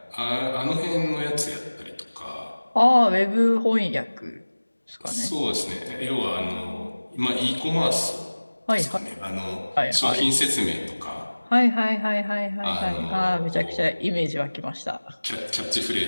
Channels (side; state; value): both; inverted; correlation -1.00